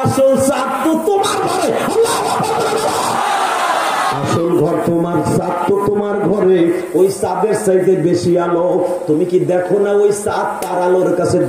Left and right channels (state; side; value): identical; both; correlation 1.00